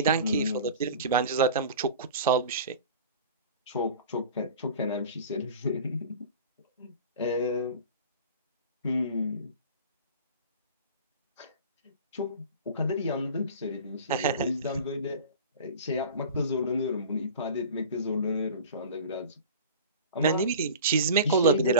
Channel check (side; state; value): both; inverted; correlation -0.38